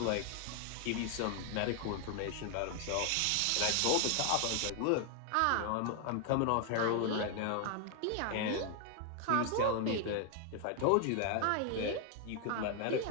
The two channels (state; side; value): different; both; correlation 0.00